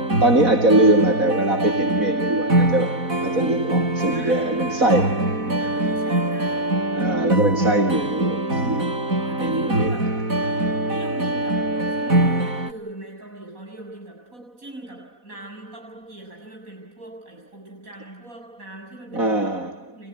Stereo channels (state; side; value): late; left; 4.1 ms